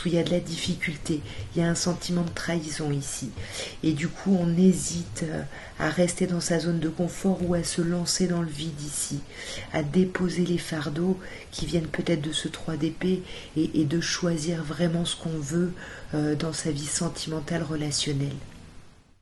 ou il y a de la difficulté, il y a un sentiment de trahison ici. Et du coup, on hésite à rester dans sa zone de confort ou à se lancer dans le vide ici, à déposer les fardeaux qui viennent peut-être de ce 3 d'épée et de choisir vraiment ce qu'on veut dans sa vie sentimentale, relationnelle.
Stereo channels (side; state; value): both; identical; correlation 1.00